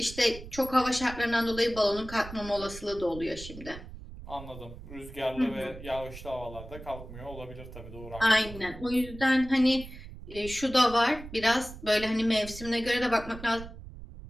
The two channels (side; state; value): right; noise; rumble, 14 dB below the sound